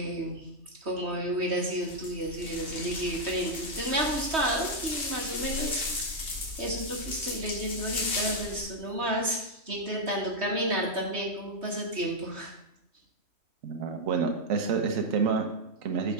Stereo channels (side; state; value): left; late; 3.2 ms